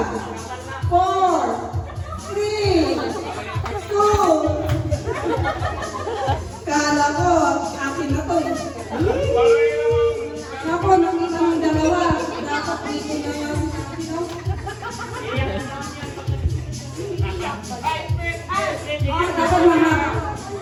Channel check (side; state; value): both; identical; correlation 1.00